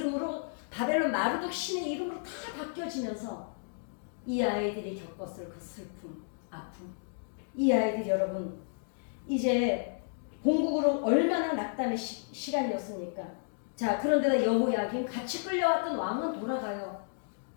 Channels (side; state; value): right; silent; digital silence